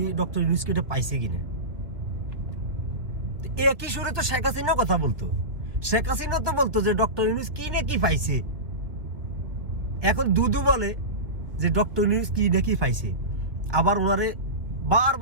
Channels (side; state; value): left; late; 1.6 ms